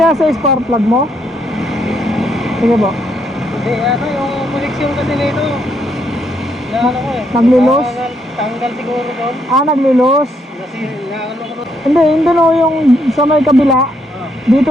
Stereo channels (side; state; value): both; normal; correlation 0.75